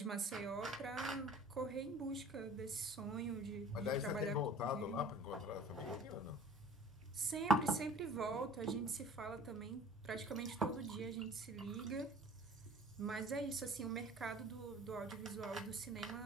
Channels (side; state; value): both; normal; correlation 0.47